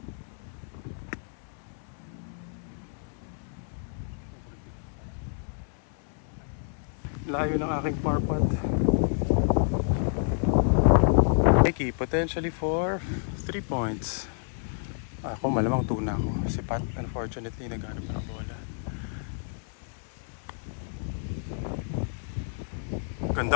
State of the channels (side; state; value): right; silent; 57 dB below the other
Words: Layo ng aking par putt. Mikey, potentially for 3 points. Ako malamang 2 na ako. Si Pat, unfortunately, naghanap pa ng bola.